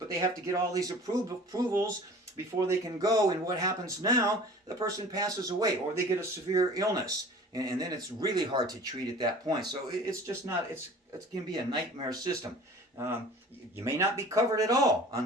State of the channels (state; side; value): normal; both; correlation 0.44